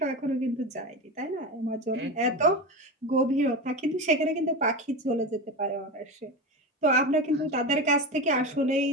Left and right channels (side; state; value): both; normal; correlation 0.22